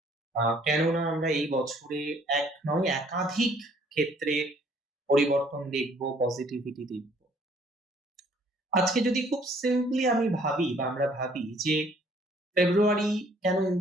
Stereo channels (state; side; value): normal; both; correlation 0.60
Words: কেননা আমরা এই বছরে এক নয় একাধিক ক্ষেত্রে পরিবর্তন দেখব, পজিটিভিটি দেখব। আজকে যদি খুব সিম্পলি আমি ভাবি বা আমরা ভাবি যে ফেব্রুয়ারি কেন